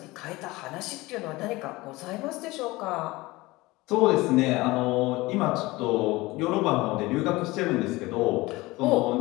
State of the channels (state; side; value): quieter; right; 20.8 dB